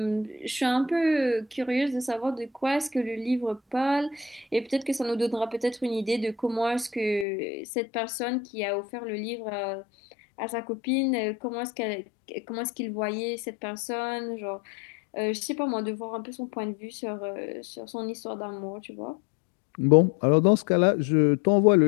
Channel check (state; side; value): drops out; right; at 7.2 s